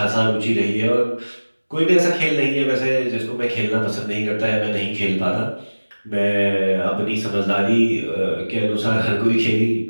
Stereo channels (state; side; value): inverted; both; correlation -1.00